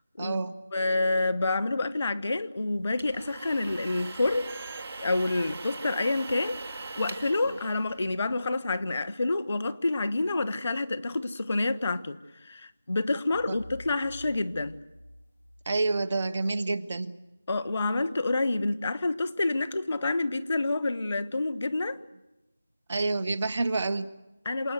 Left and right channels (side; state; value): both; inverted; correlation -0.90